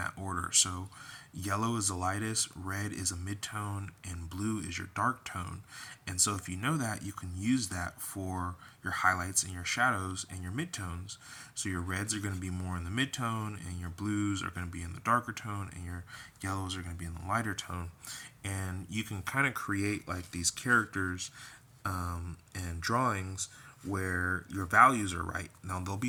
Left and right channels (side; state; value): both; identical; correlation 1.00